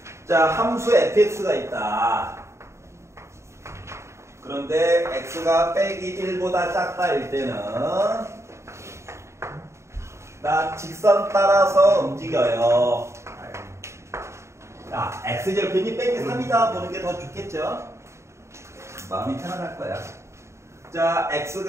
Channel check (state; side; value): late; left; 0.14 ms